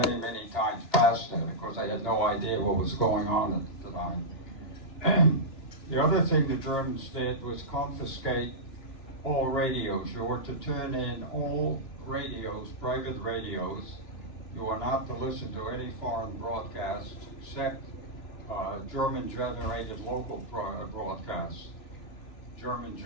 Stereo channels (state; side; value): late; right; 2.9 ms